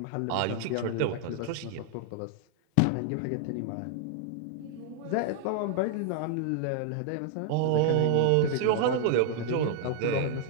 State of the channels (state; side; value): different; both; correlation 0.00